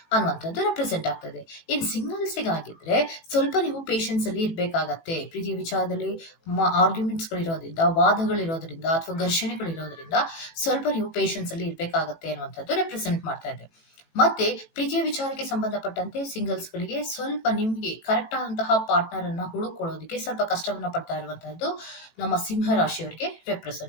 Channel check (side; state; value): right; late; 18 ms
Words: ಅನ್ನುವಂಥದ್ದು ರೆಪ್ರೆಸೆಂಟ್ ಆಗ್ತದೆ. ಇನ್ ಸಿಂಗಲ್ಸಿಗಾಗಿದ್ರೆ ಸ್ವಲ್ಪ ನೀವು ಪೇಷನ್ಸ್ ಅಲ್ಲಿ ಇರ್ಬೇಕಾಗತ್ತೆ. ಪ್ರೀತಿಯ ವಿಚಾರದಲ್ಲಿ ಆರ್ಗ್ಯುಮೆಂಟ್ಸ್ ಗಳಿರೋದ್ರಿಂದ, ವಾದಗಳಿರೋದ್ರಿಂದ ಅಥವಾ ಘರ್ಷಣೆಗಳಿರೋದ್ರಿಂದ ಸ್ವಲ್ಪ ನೀವು ಪೇಷನ್ಸ್ ಅಲ್ಲಿ ಇರ್ಬೇಕಾಗತ್ತೆ ಅನ್ನುವಂಥದ್ದು ರೆಪ್ರೆಸೆಂಟ್ ಮಾಡ್ತಾ ಇದೆ. ಮತ್ತೆ ಪ್ರೀತಿಯ ವಿಚಾರಕ್ಕೆ ಸಂಬಂಧಪಟ್ಟಂತೆ ಸಿಂಗಲ್ಸ್ ಗಳಿಗೆ ಸ್ವಲ್ಪ ನಿಮ್ಗೆ ಕರೆಕ್ಟ್ ಆದಂತಹ ಪಾರ್ಟ್ನರ್ ಅನ್ನ ಹುಡುಕೊಳ್ಳೋದಕ್ಕೆ ಸ್ವಲ್ಪ ಕಷ್ಟವನ್ನ ಪಡ್ತಾ ಇರುವಂತಹದ್ದು ನಮ್ಮ ಸಿಂಹ ರಾಶಿಯವರಿಗೆ